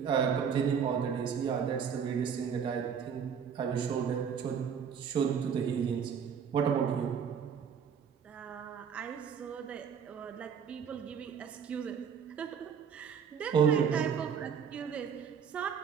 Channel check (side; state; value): left; quieter; 7.3 dB